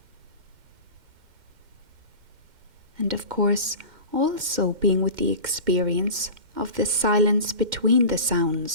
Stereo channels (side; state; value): left; late; 2.1 ms